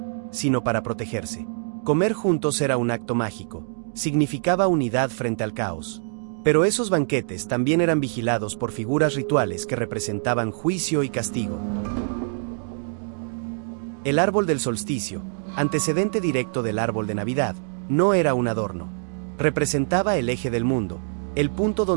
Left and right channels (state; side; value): silent; left; 62 dB below the other